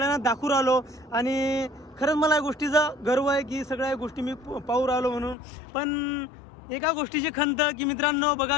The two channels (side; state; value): right; drops out; at 5.4 s